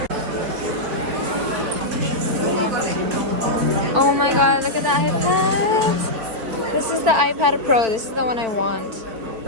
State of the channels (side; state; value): left; late; 4.5 ms